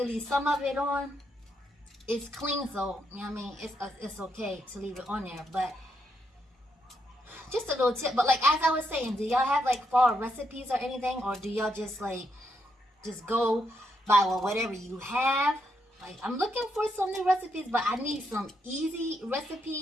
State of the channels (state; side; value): normal; both; correlation 0.79